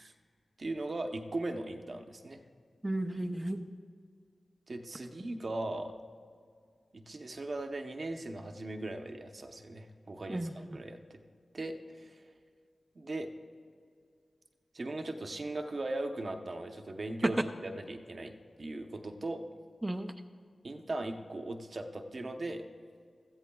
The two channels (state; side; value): normal; both; correlation 0.97